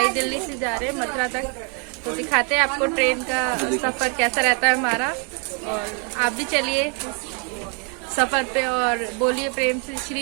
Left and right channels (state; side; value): quieter; left; 37.7 dB